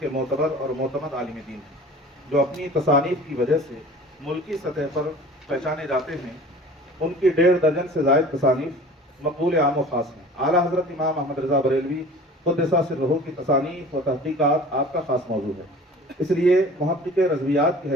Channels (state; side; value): normal; both; correlation 0.43